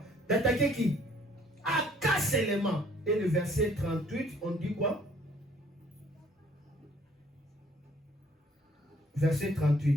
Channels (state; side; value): normal; both; correlation 0.60